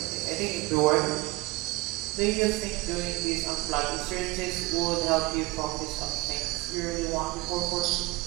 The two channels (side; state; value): left; quieter; 22.3 dB